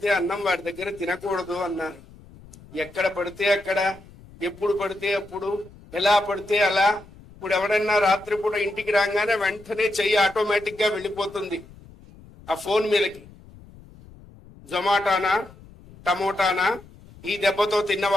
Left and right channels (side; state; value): left; noise; rumble, 22 dB below the sound